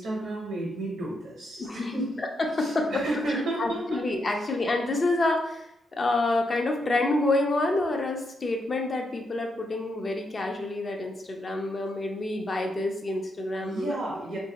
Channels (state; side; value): normal; both; correlation 0.81